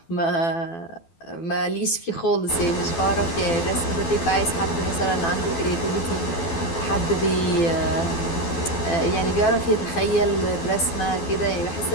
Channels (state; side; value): late; right; 12 ms